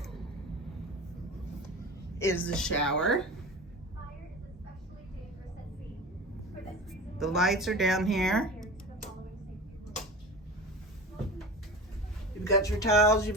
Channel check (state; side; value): normal; both; correlation 0.33